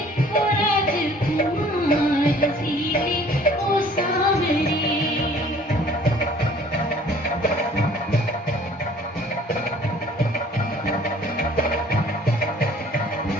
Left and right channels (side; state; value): both; normal; correlation 0.53